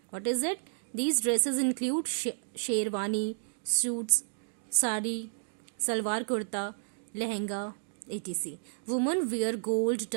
What is it? These dresses include sherwani, suits, sari, salwar kurta, lehenga, etc. Women wear gold,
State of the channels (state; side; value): silent; left; 57 dB below the other